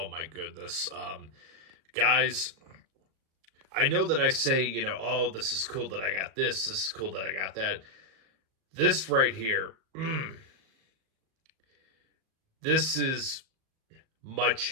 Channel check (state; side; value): late; left; 37 ms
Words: my goodness. Guys, I know that I say, oh, this is cool that I got this is cool that I got that. This right here, this is